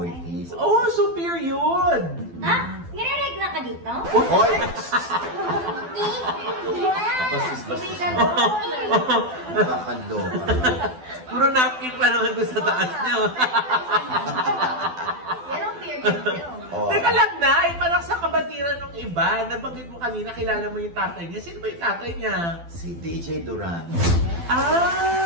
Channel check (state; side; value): late; left; 12 ms